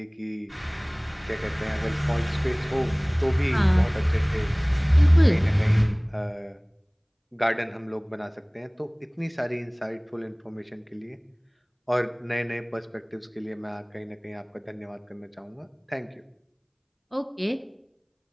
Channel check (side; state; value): both; identical; correlation 1.00